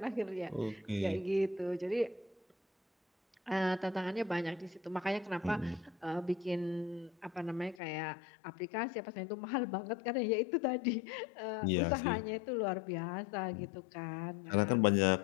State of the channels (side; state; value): right; drops out; at 7.8 s